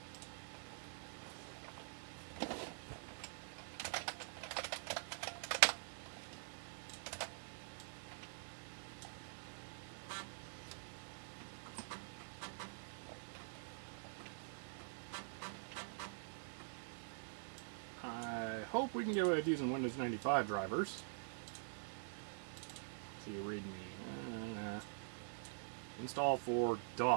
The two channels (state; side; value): silent; left; digital silence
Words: I hope we can get away with using Windows 95 drivers. So you read me. Install for